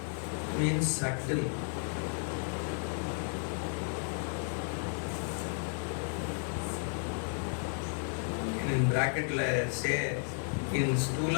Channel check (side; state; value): right; silent; 56 dB below the other